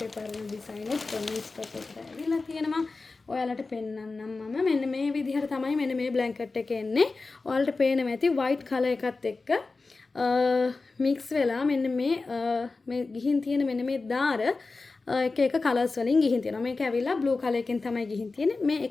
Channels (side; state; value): right; quieter; 3.8 dB